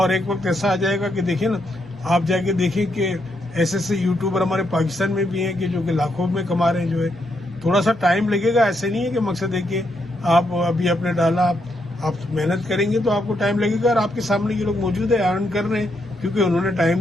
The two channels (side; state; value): both; normal; correlation 0.78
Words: ایک وقت ایسا آ جائے گا کہ دیکھیں نا، آپ جا کے دیکھیں کہ ایسے یوٹیوبر ہمارے پاکستان میں بھی ہیں کہ جو کہ لاکھوں میں کما رہے ہیں. جو ہے تھوڑا سا ٹائم لگے گا، ایسے نہیں ہے کہ مقصد ہے کہ آپ ابھی آپ نے ڈالا، آپ محنت کریں گے تو آپ کو ٹائم لگے گا، اور آپ کے سامنے یہ لوگ موجود ہیں، ارن کر رہے ہیں کیونکہ انہوں نے ٹائم